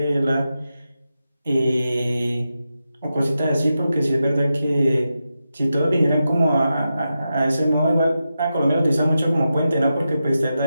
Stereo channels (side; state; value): both; inverted; correlation -0.89